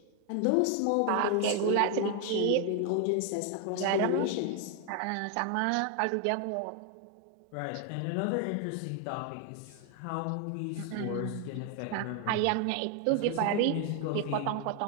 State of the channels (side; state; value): both; different; correlation 0.00